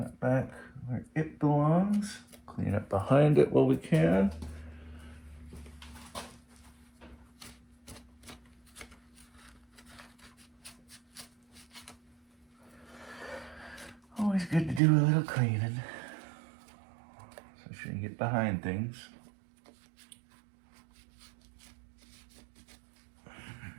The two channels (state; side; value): drops out; left; at 14.8 s